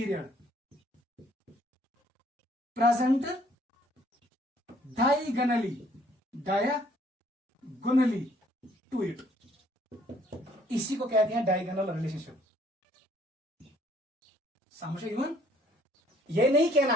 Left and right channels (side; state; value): both; normal; correlation 0.62